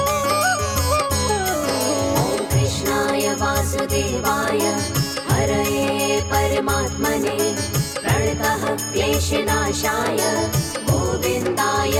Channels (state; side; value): identical; both; correlation 1.00